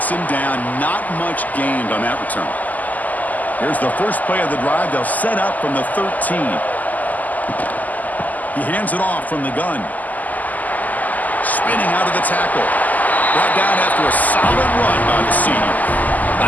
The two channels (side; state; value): right; late; 0.080 ms